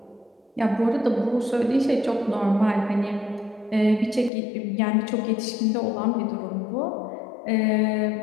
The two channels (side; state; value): right; drops out; at 4.3 s